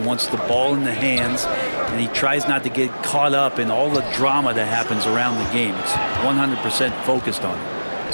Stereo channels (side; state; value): both; inverted; correlation -1.00